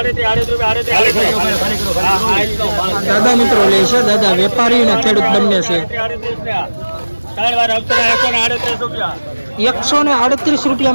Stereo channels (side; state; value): both; inverted; correlation -1.00